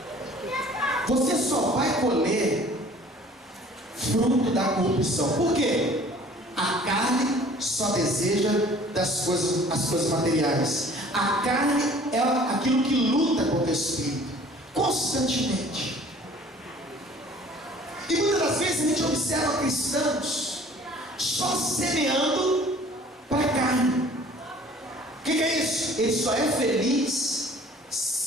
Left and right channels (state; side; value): normal; both; correlation 0.51